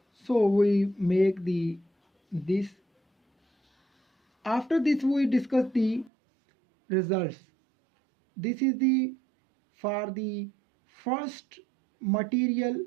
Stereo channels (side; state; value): left; drops out; at 6.1 s